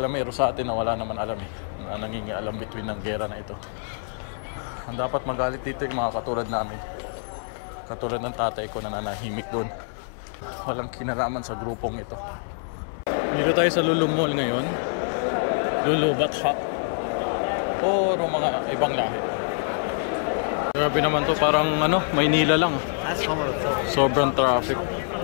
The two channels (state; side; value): silent; right; 61 dB below the other